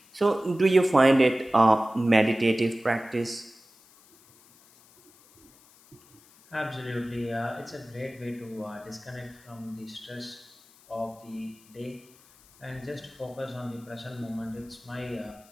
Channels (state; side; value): noise; left; hiss, 27 dB below the sound